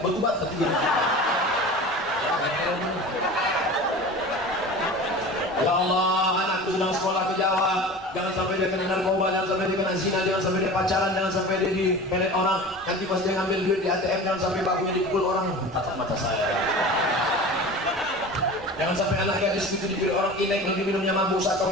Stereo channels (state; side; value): normal; both; correlation 0.36